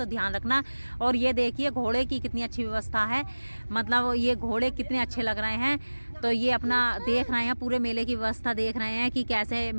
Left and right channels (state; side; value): inverted; both; correlation -1.00